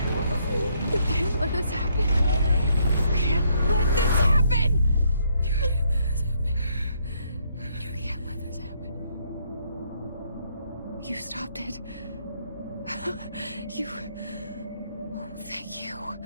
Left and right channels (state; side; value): inverted; both; correlation -0.71